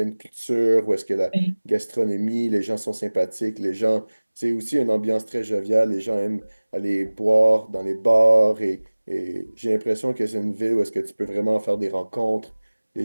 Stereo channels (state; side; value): inverted; both; correlation -1.00